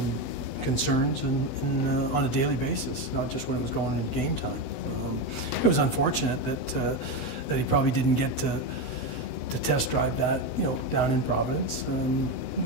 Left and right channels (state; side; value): late; right; 7.9 ms